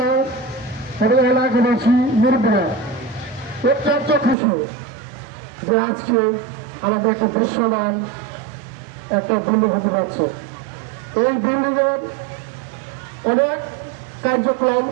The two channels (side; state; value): left; drops out; at 4.4 s